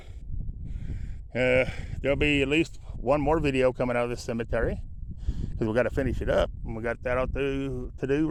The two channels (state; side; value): identical; both; correlation 1.00